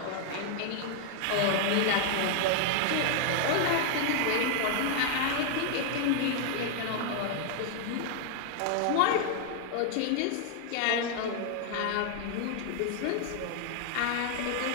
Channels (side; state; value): both; different; correlation 0.00